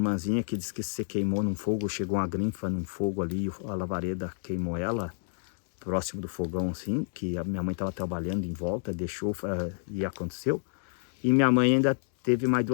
que disse que se queimou num fogo, chegou uma grinfa num fogo ali, a lavareda queimou ela, próximo do fogão assim, que a minha mãe estava trabalhando em volta, deixou e aconteceu. E minha mãe ainda teve mais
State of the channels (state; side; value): silent; right; 58 dB below the other